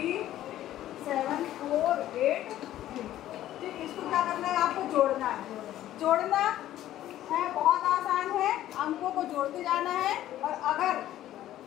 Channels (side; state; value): right; quieter; 13.2 dB